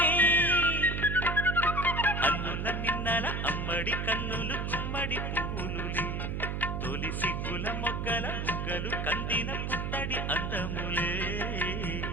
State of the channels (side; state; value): right; noise; hum, 2 dB below the sound